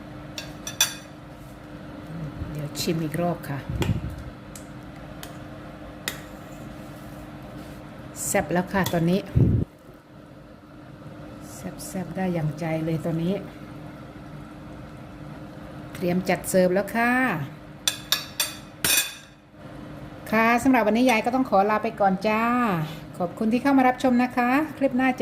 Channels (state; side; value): identical; both; correlation 1.00